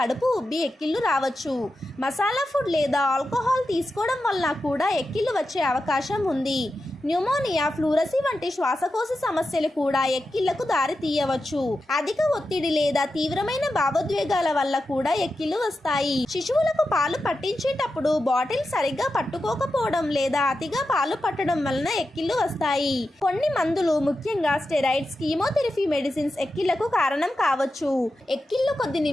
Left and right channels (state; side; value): normal; both; correlation 0.90